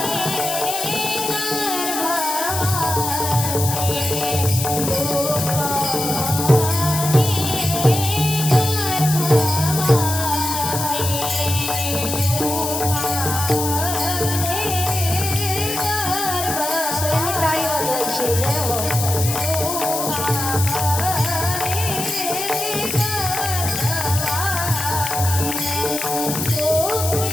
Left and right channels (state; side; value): noise; left; hiss, 3 dB below the sound